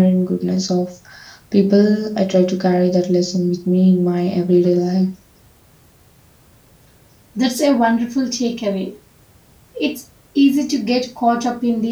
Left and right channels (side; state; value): both; identical; correlation 1.00